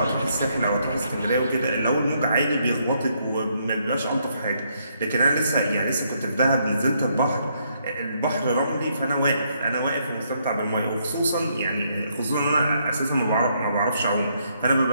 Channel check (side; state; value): both; inverted; correlation -0.73